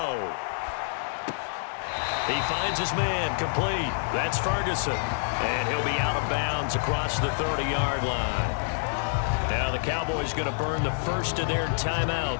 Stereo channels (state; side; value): silent; right; digital silence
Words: He finds his man complete. That's Ferguson. And he'll be out of bounds across the 30-yard line. Now the Cowboys going to burn the first of their